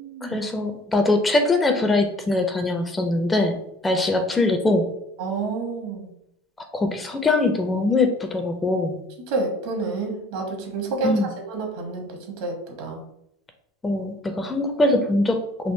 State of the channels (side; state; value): both; normal; correlation 0.57